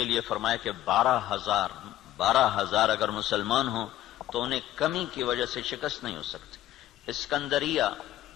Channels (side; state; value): right; quieter; 13.6 dB